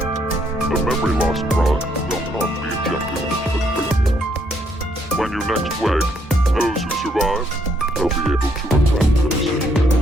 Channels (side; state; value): both; normal; correlation 0.71